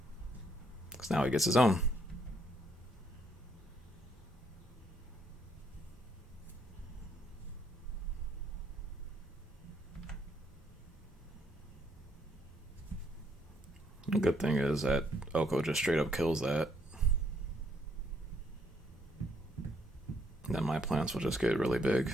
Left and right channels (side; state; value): both; normal; correlation 0.70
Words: Because now he gets his own. The good thing is that Oko just straight up kills that. Then my plants will just get really big.